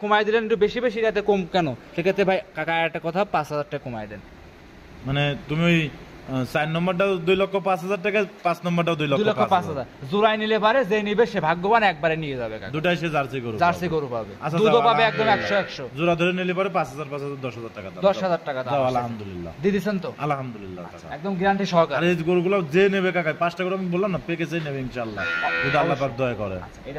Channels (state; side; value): identical; both; correlation 1.00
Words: কমাই দিলেন একটু বেশি বেশি, যাতে কম কেন। সেক্ষেত্রে ভাই কাকা একটা কথা, 5,000 টাকা কমাই দেন। মানে তুমি ওই 4 নম্বরটাও 2,05,000 টাকা, 5 নম্বরটাও 2,05,000 জোড়াই নিলে পারে, যে নিবে সে ভাগ্যবান, একবারে নিয়ে যাবে কাকা। দুটাই সে জার্সি গরু পাবে, আচ্ছা, দুধও পাবে একদম 100-100। জোড়া ধরে নিলে পারে 5,000 10,000 টাকা দাম। 10,000 টাকা দাম। আলহামদুলিল্লাহ দিয়ে দিছেন তো? আলহামদুলিল্লাহ একদম গ্যারান্টি সহকারে। আর এই গরুগুলো যে নেবে কাকা, 5টা গরু আমি বললাম না, প্যাকেজেই নেবে ইনশাআল্লাহ, যদি আল্লাহ পাক দয়া করে।